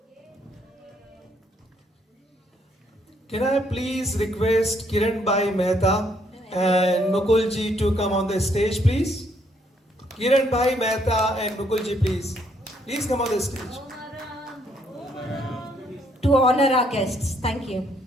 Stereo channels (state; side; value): normal; both; correlation 0.70